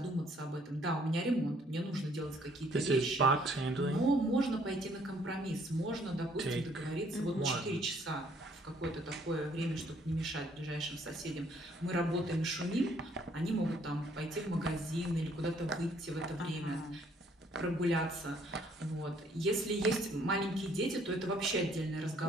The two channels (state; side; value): normal; both; correlation 0.63